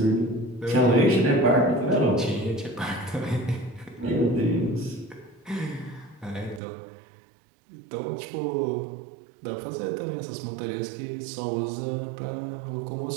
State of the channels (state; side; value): drops out; left; at 6.6 s